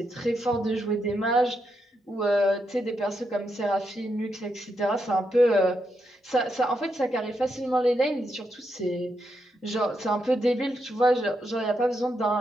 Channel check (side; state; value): both; normal; correlation 0.82